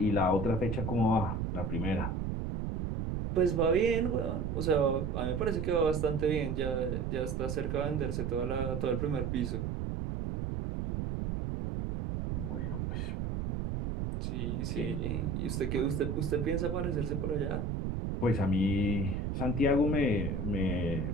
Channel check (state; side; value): noise; right; rumble, 2 dB below the sound